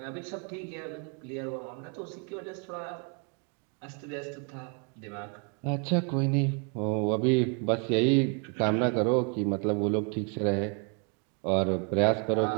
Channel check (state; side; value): quieter; left; 36.7 dB